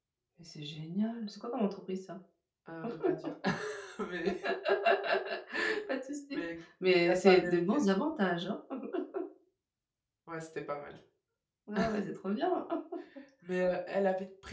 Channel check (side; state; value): both; identical; correlation 1.00